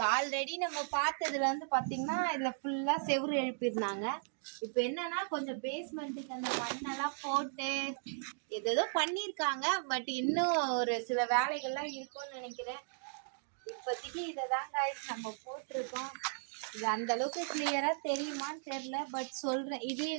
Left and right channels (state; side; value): silent; left; digital silence